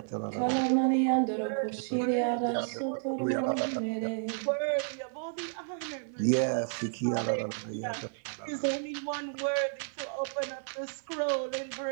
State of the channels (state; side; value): silent; left; 57 dB below the other